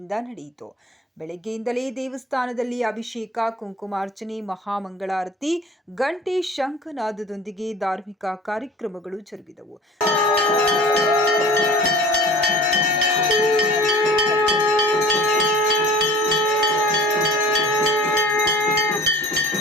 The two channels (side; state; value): both; normal; correlation 0.44